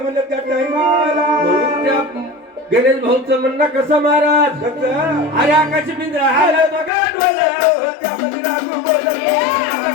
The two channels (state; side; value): drops out; right; at 6.9 s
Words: म्हणजे त्या टाइमाला म्हणून त्या गणेश भाऊचं म्हणणं कसं महाराज कसं अरे आकाश पिंजरा हाल बघा डोला त्यामध्ये रागू बोलत